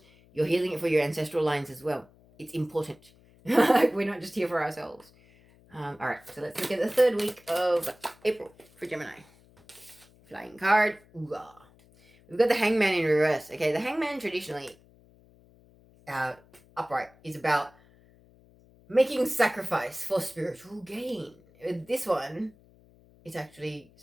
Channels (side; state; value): left; noise; hum, 28 dB below the sound